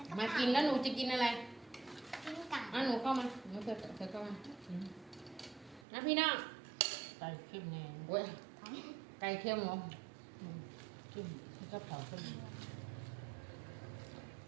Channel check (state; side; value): drops out; left; at 5.9 s